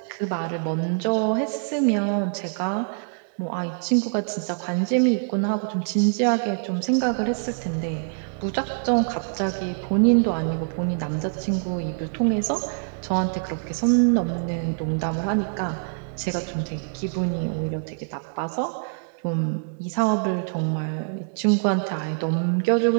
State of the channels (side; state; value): left; silent; digital silence